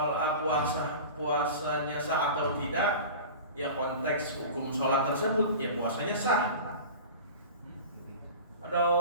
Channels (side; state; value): both; inverted; correlation -0.35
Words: puasanya sah atau tidak, ya konteks hukum sholat tersebut, ya puasanya sah. Ada